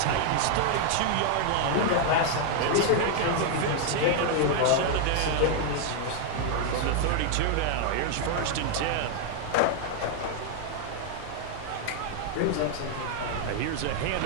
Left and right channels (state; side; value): different; both; correlation 0.00